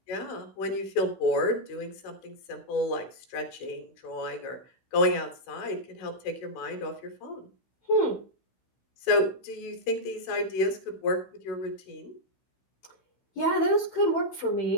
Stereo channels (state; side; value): late; right; 16 ms